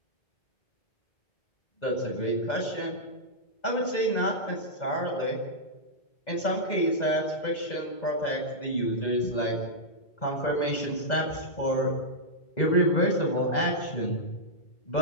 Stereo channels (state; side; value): late; right; 2.0 ms